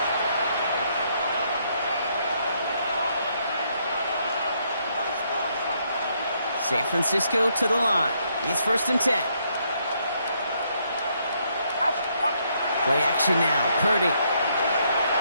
San Francisco to the line. It's first and 10. Play action now. Purdy.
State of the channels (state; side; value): inverted; both; correlation -0.73